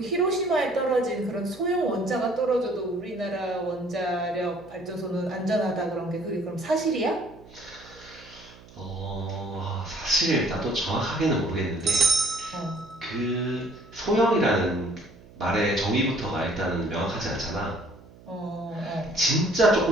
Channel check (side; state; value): right; noise; hum, 22 dB below the sound